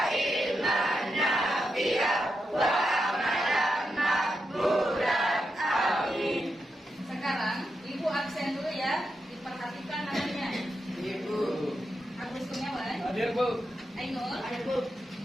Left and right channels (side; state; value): both; normal; correlation 0.86